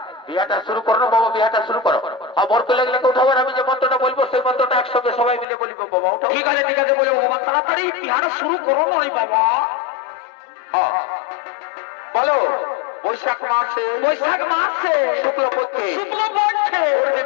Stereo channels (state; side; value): drops out; right; at 5.5 s